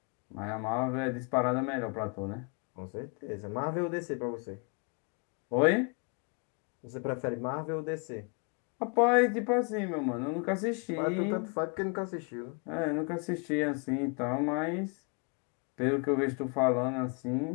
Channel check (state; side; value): quieter; right; 35.8 dB